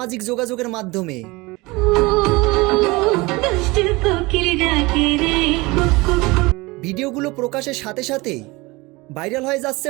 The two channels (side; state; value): left; quieter; 23.3 dB